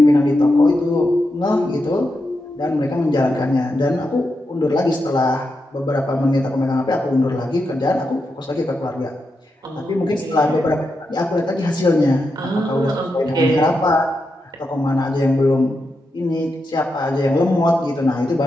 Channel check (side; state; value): both; normal; correlation 0.86